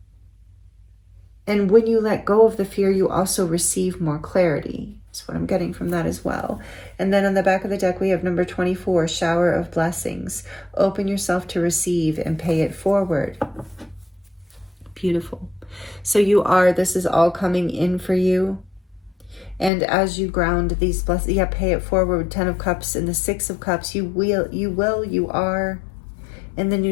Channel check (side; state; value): right; drops out; at 19.7 s